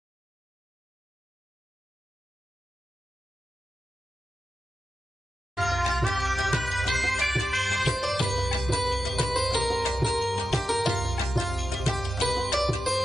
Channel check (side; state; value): both; normal; correlation 0.90